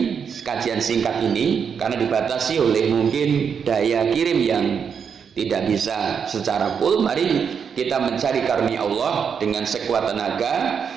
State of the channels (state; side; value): quieter; left; 6.8 dB